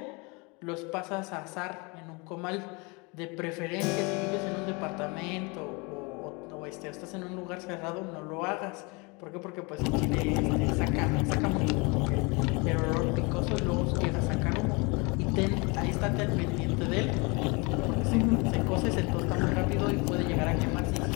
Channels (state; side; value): quieter; right; 28.8 dB